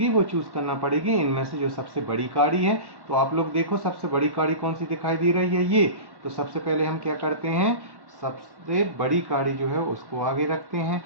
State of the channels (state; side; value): late; left; 1.1 ms